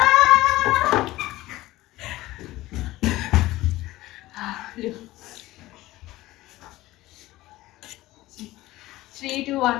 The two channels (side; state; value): right; quieter; 17.4 dB